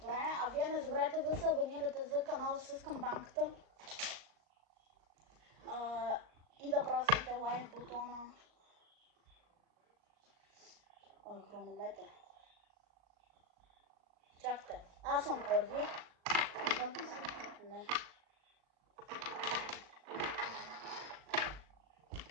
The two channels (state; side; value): late; left; 38 ms